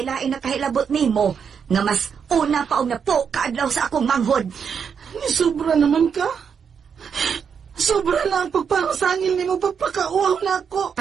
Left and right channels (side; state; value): left; quieter; 6.9 dB